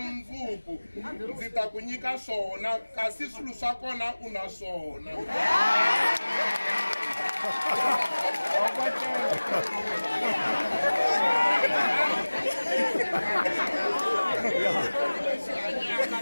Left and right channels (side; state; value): both; inverted; correlation -1.00